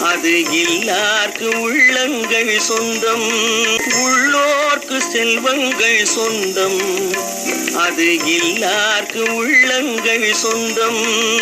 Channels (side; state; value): both; identical; correlation 1.00